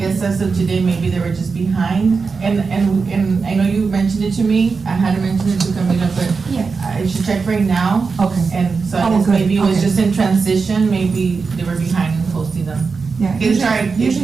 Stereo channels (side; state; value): left; quieter; 4.8 dB